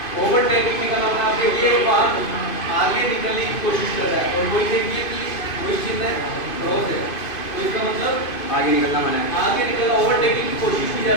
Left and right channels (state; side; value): late; right; 2.5 ms